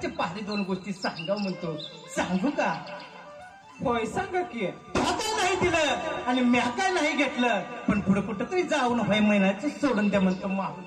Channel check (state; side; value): identical; both; correlation 1.00